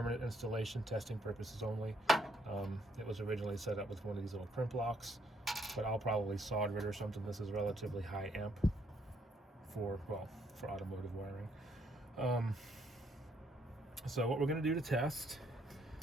installation, testing purposes only. It was originally set up with one of these little crimp locks, but I'll probably solder it or something. This is relatively high amp for automotive wiring. So what we're going to do to test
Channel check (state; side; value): normal; both; correlation 0.71